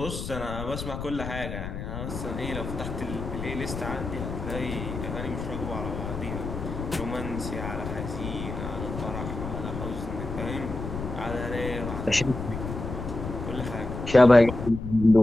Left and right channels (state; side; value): noise; left; rumble, 6 dB below the sound